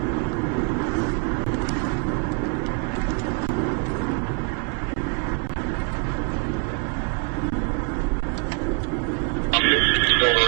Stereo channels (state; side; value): quieter; left; 32.1 dB